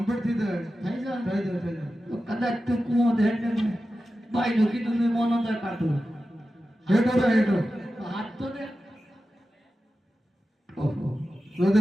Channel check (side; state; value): both; normal; correlation 0.93